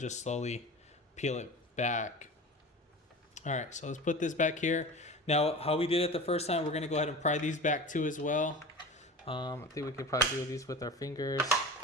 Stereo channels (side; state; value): both; normal; correlation 0.33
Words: slowly peel it back. All right, so let's put this back here. Now, how we did it the first time, we're gonna go ahead and pry these back too as well. I think we could probably do these with our fingers.